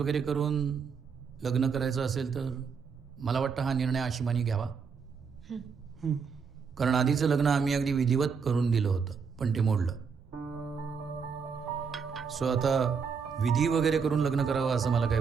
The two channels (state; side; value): quieter; left; 5.9 dB